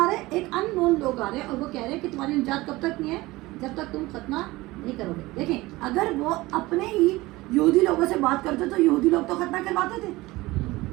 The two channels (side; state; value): left; quieter; 19.9 dB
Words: رہے ہیں؟ ایک ان نون لوگ آ رہے ہیں, اور وہ کہہ رہے ہیں کہ تمہاری نجات کب تک نہیں ہے, جب تک تم ختنہ نہیں کرو گے. دیکھیں اگر وہ اپنے ہی یہودی لوگوں سے بات کرتے تو یہودی لوگ تو ختنہ کرواتے تھے.